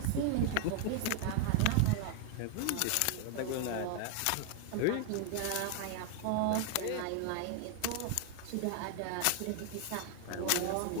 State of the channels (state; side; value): different; both; correlation 0.00